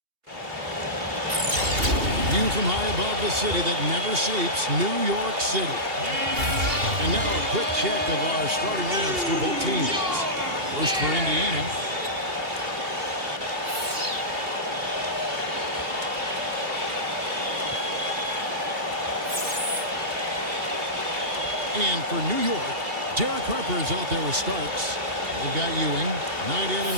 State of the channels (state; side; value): late; left; 2.8 ms